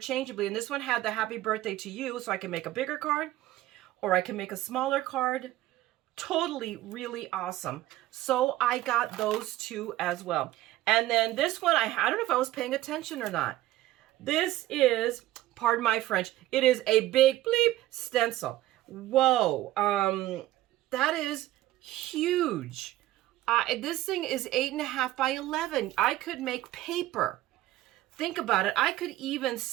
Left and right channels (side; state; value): left; quieter; 15.4 dB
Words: And this one had the happy birthday to you, so I can make a bigger card or I can make a smaller card. Totally, really awesome. So I got those two as well. And then this one, I don't know if I was paying attention or not. This is, pardon my French, it is a big bleep stencil. Whoa, that is huge. This thing is 8.5 by 11. I could make paper. Think about it. I could even